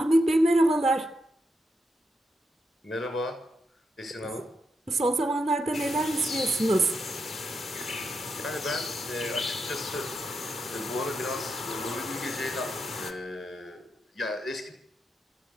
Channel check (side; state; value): both; normal; correlation 0.83